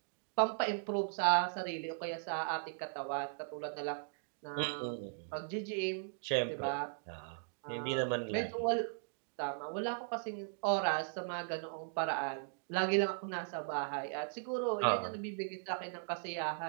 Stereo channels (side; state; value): left; silent; digital silence